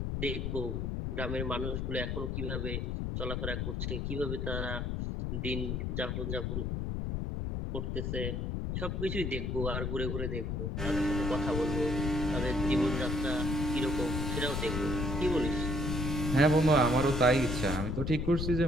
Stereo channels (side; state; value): left; noise; rumble, 1 dB below the sound